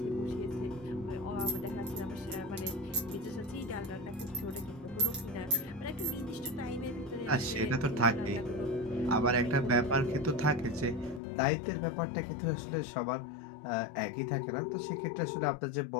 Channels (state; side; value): drops out; right; at 11.2 s